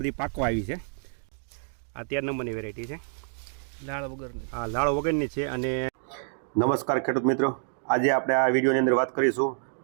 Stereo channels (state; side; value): silent; left; 59 dB below the other